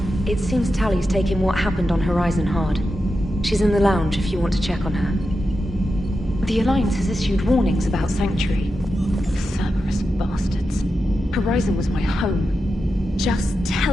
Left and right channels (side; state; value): both; normal; correlation 0.89